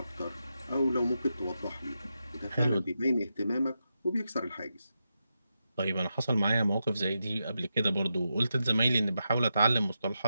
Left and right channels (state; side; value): inverted; both; correlation -0.87